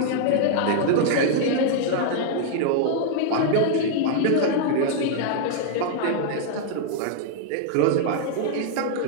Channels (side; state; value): both; different; correlation 0.00